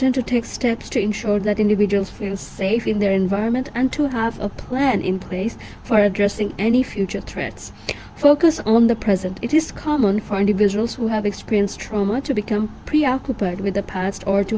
to take steps to ensure that individuals feel safe in their environment and to have a plan in place for addressing any future threats. Focus on the present. It is common for individuals who have experienced trauma to become preoccupied with the past or to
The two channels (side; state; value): both; identical; correlation 1.00